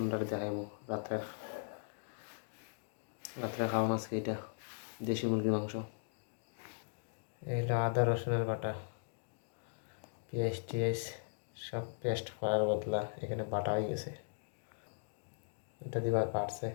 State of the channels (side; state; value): right; silent; digital silence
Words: দেখাইবো। রাত্রে খাওয়া আজকে এটা দেশি মুরগির মাংস। এইটা আদা রসুনের বাটা, পেঁয়াজ টিয়াজ সব পেস্ট করার বদলা এখানে বাটা হয়ে গেছে। এটা দিবার পারছে,